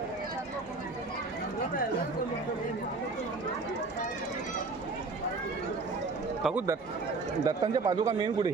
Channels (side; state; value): left; quieter; 3.9 dB